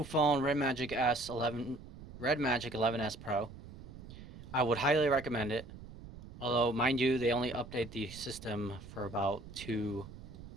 phone, Redmagic S11, Redmagic 11S Pro. I would highly recommend it. Although, mind you, they only update the system for about two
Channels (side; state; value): right; noise; rumble, 15 dB below the sound